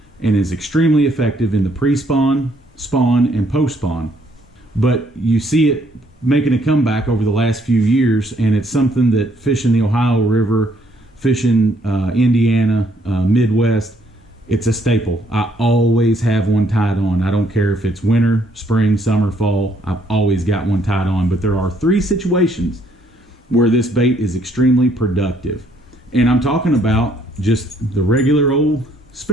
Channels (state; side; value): normal; both; correlation 0.68